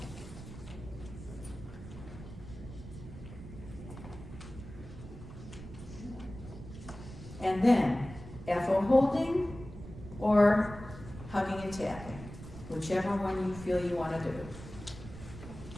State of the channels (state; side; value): noise; right; rumble, 13 dB below the sound